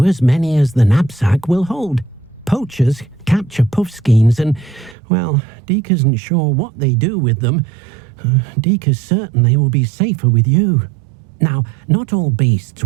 as many as the knapsack will hold. Poachers capture puffskeins and, well, Deke isn't sure what they do with them. Deke is certain they will be safer with you. Now, not all beasts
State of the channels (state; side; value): drops out; left; at 5.0 s